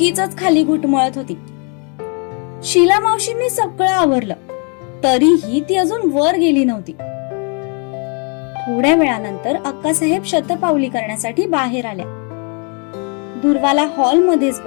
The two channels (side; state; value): right; quieter; 37.5 dB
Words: खाली घुटमळत होती. शीला मावशींनी सगळं आवरलं, तरीही ती अजून वर गेली नव्हती. थोड्या वेळानंतर अक्कासाहेब शतपावली करण्यासाठी बाहेर आल्या. दुर्वाला हॉलमध्येच